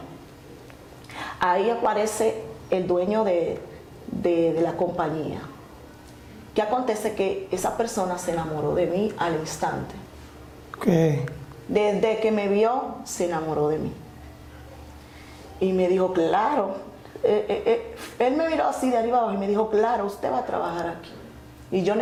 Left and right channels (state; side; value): identical; both; correlation 1.00